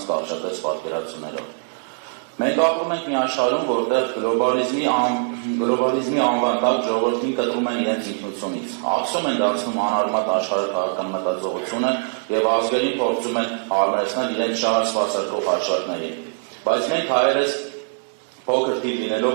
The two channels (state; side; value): silent; left; digital silence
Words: կարճատես պատկերացումներով։ Մենք ապրում ենք մի աշխարհում, որտեղ գլոբալիզմի անվան տակ ժողովրդին կտրում են իրենց ինքնությունից, ակսում են դարձնում անարմատ աշխարհաքաղաքական մտածողությունը եւ ազգերին փորձում են հարմարեցնել իրենց շահը սպասարկող հաշվարկներին։ Բայց մենք հայերս փոքր թիվ